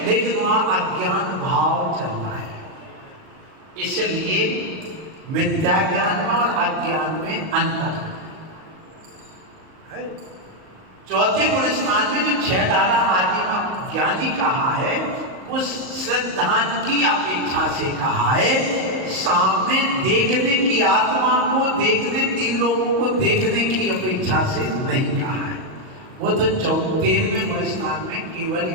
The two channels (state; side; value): late; left; 38 ms